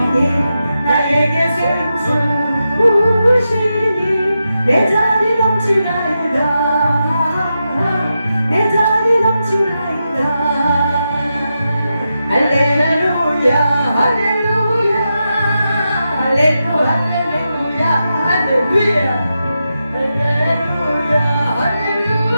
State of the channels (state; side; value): inverted; both; correlation -0.88